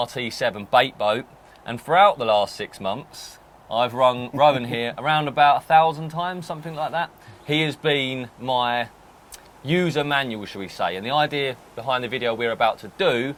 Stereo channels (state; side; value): identical; both; correlation 1.00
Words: Baitboat, and throughout the last 6 months, I've rung Rowan here around about 1,000 times, something like that. He has been my user manual, shall we say, and the idea behind the video we're about to do